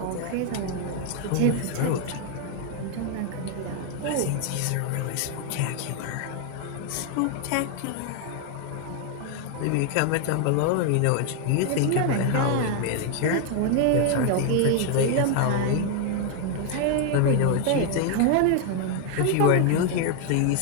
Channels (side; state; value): both; different; correlation 0.00